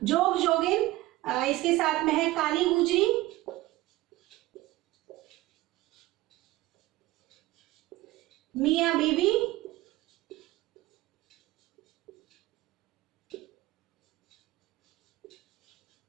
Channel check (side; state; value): left; quieter; 17.7 dB